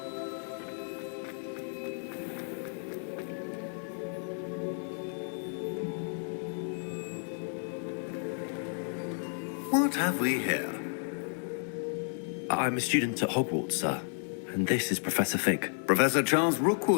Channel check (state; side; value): silent; right; 56 dB below the other